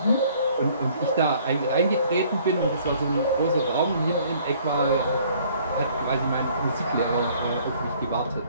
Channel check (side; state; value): both; inverted; correlation -0.58